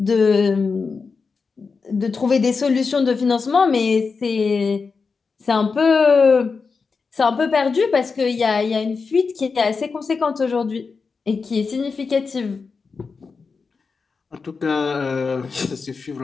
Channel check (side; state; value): right; quieter; 4.8 dB